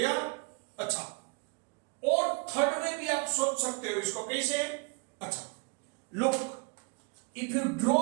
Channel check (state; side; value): quieter; left; 32.3 dB